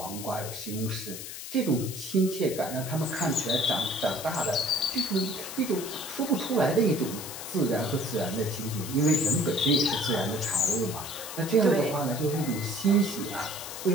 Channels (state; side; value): noise; left; hiss, 9 dB below the sound